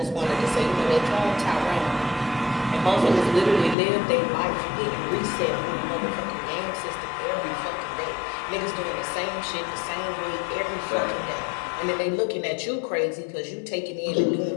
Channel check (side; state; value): right; drops out; at 3.8 s